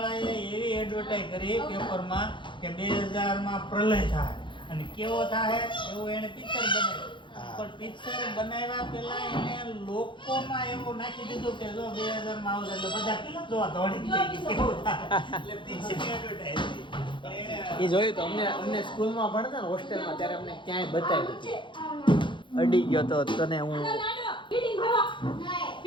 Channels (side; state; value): right; late; 0.23 ms